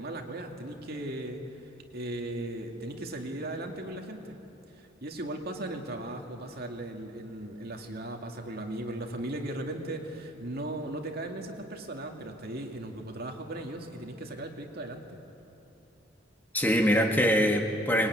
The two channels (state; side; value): normal; both; correlation 0.58